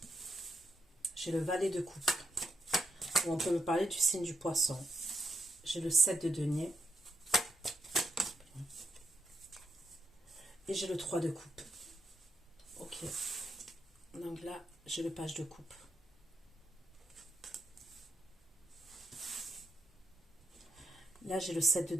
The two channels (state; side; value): normal; both; correlation 0.82